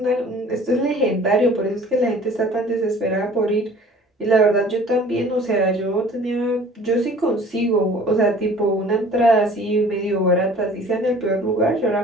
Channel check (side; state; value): both; normal; correlation 0.49